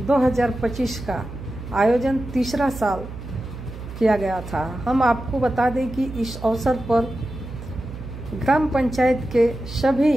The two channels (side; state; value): right; noise; hum, 11 dB below the sound